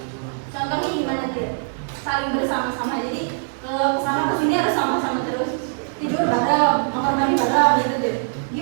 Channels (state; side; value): silent; left; digital silence